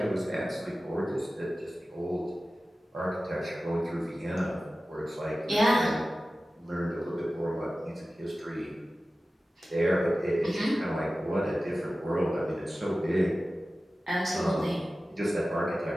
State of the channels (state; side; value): normal; both; correlation 0.95